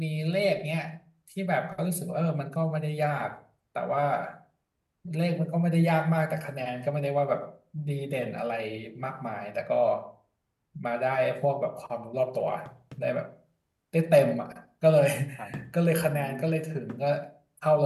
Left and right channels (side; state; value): both; identical; correlation 1.00